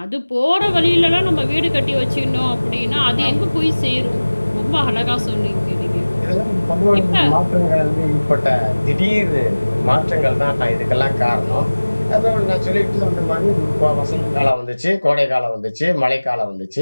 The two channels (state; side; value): inverted; both; correlation -1.00